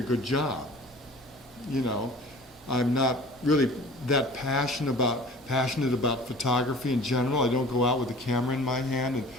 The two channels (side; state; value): both; normal; correlation 0.44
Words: good job. I'm not really that passionate about photography in general. I don't go out with a camera in my hand and